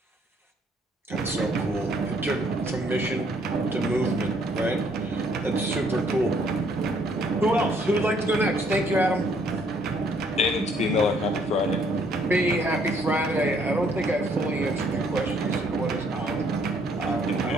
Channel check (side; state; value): both; normal; correlation 0.66